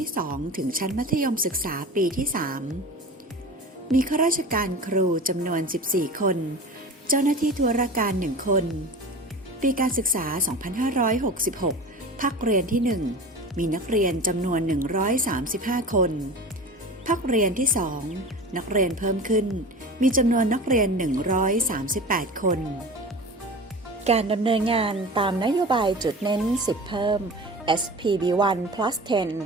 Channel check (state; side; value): normal; both; correlation 0.34